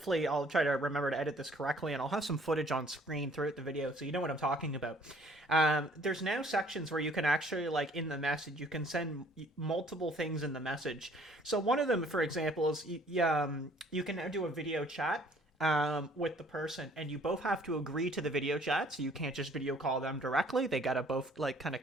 I'll try to remember to edit this correctly, and I'll have some footage on screen throughout the video so you know what I'm talking about. There's now sections where you can actually, like, in the message, you can send multiple things in the message. So one of them, for example, is you can now do a video chat with the person, and you both have to agree to the video chat, so you can't just video call them directly. They gotta both, like, kind of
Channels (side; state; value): both; normal; correlation 0.57